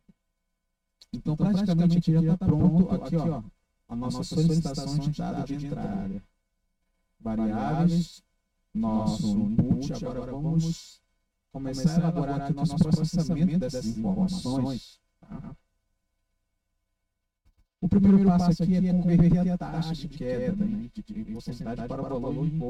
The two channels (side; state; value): both; identical; correlation 1.00